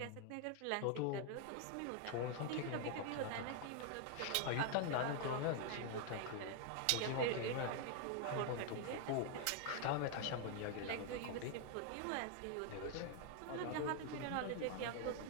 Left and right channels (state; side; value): different; both; correlation 0.00